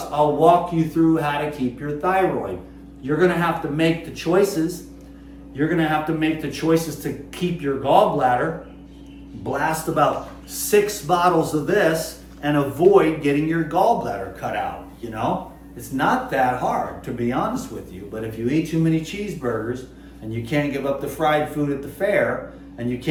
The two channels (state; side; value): identical; both; correlation 1.00